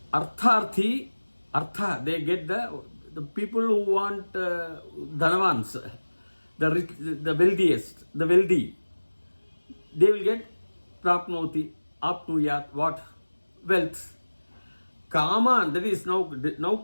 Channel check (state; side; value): inverted; both; correlation -1.00